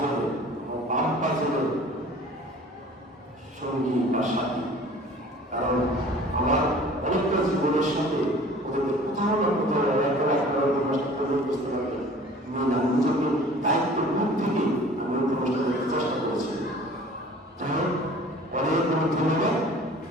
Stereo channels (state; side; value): normal; both; correlation 0.47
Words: বাম পাঁচজনের সঙ্গী বা সাথী, কারণ আমার অনেকটা জীবনের সাথে ওদেরকে কোথাও না কোথাও বুঝতে পারবে না, নিজেকে দায়িত্ব মুখ থেকে আমি উপস্থিত করার চেষ্টা করেছি। যাই হোক, অনেক অনেক ধন্যবাদ।